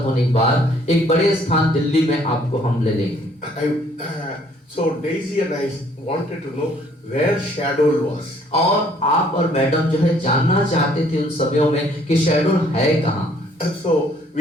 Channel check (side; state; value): both; normal; correlation 0.62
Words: होने के बाद एक बड़े स्थान दिल्ली में आपको हम ले लेंगे. So Daisy and I wanted to know where Shadol was. और आप और मैडम जो है जानना चाहते थे उन समयों में कि शहडोल है कहाँ. So